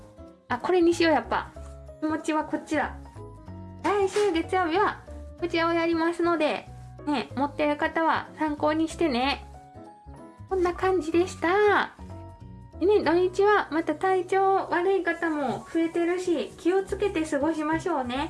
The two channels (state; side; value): identical; both; correlation 1.00